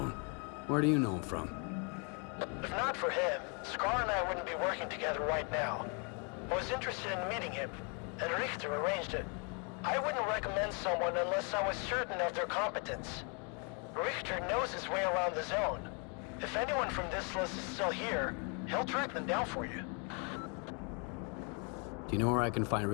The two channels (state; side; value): quieter; right; 36.4 dB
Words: Where do you know him from? If not for him, Scar and I wouldn't be working together right now. I was interested in meeting him, and Richter arranged it. I wouldn't recommend someone unless I was certain of their competence. Richter knows his way around the zone. If anyone from this list is still here, he'll track them down for you. Do you know where I can find